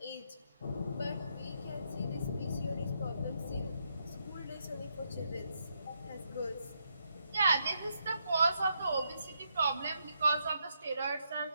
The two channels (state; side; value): inverted; both; correlation -0.79